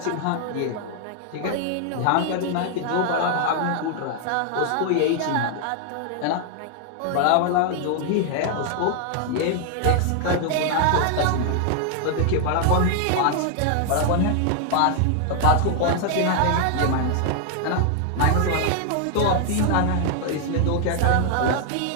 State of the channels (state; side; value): different; both; correlation 0.00